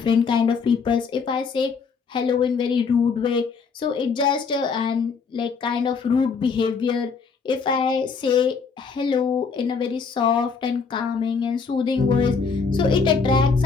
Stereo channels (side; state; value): right; quieter; 5.3 dB